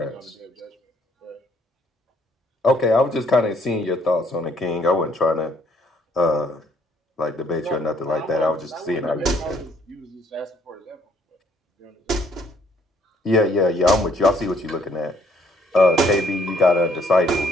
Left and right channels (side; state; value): both; normal; correlation 0.66